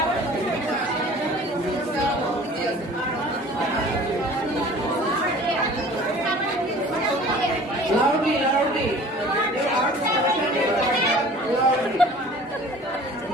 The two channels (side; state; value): both; normal; correlation 0.46